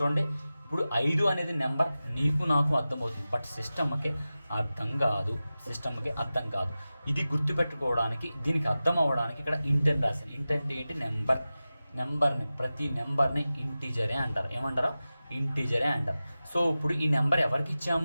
ఇప్పుడు 5 అనేది నెంబర్ నీకు నాకు అర్థమవుతుంది, బట్ సిస్టమ్కి అర్థం కాదు. ఇది గుర్తుపెట్టుకోవడానికి, దీనికి అర్థం అవ్వడానికి ఇక్కడ ఇంట్ అని రాశాను. ఇంట్ అంటే ఏంటి? ప్రతి నెంబర్ని ఇంటీజరే అంటారు. ఏమంటారు? ఇంటీజరే అంటారు. సో ఇప్పుడు ఈ నెంబర్ ఎవరికి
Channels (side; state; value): both; inverted; correlation -0.95